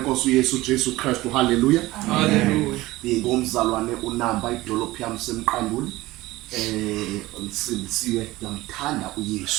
Yesu Jesu Kristu. Hallelujah. Hallelujah. Ngomzalwane uNamba idolophu yami semqanduli. Ngisindisiwe ngiyamthanda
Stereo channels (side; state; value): left; quieter; 18.6 dB